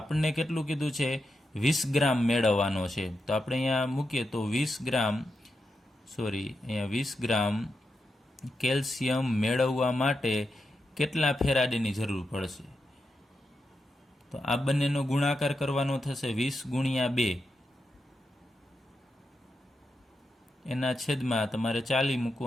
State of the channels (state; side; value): normal; both; correlation 0.87